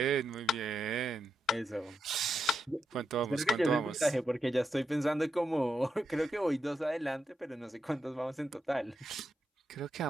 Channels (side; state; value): both; normal; correlation 0.84